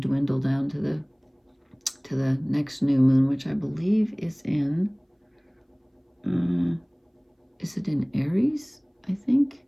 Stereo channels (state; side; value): identical; both; correlation 1.00